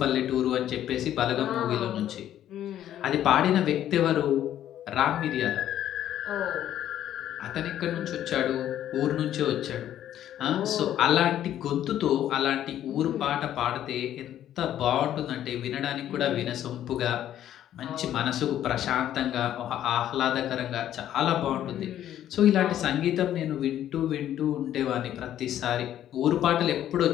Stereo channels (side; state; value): right; quieter; 11.5 dB